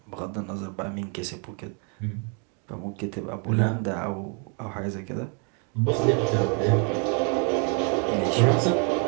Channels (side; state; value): left; quieter; 38.5 dB